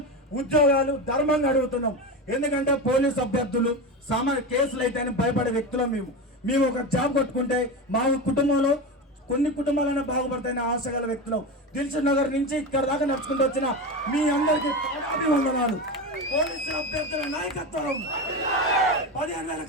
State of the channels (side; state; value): both; normal; correlation 0.21